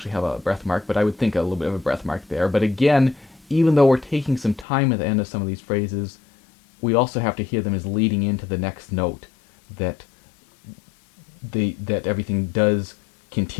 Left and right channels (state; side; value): drops out; right; at 4.7 s